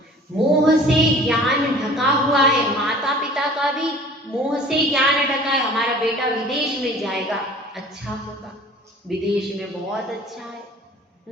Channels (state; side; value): normal; both; correlation 0.46